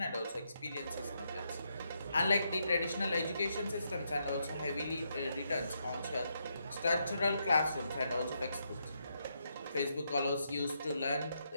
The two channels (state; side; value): inverted; both; correlation -0.80